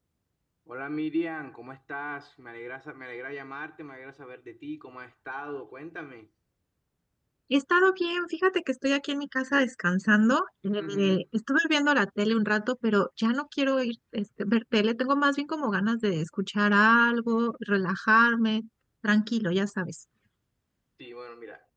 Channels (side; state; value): both; identical; correlation 1.00